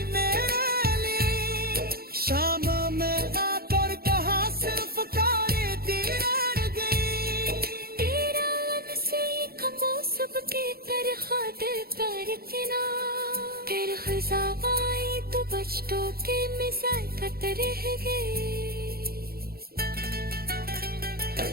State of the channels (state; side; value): late; left; 0.44 ms